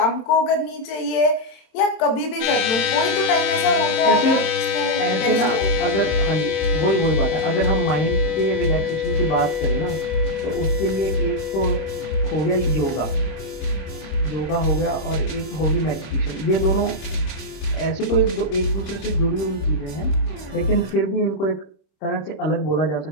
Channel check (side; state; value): right; late; 27 ms